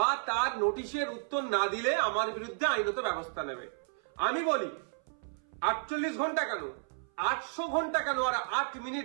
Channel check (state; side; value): silent; left; 56 dB below the other